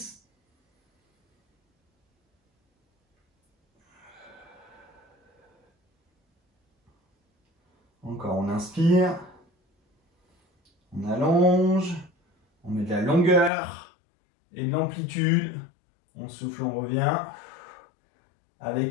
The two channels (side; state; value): right; drops out; at 13.5 s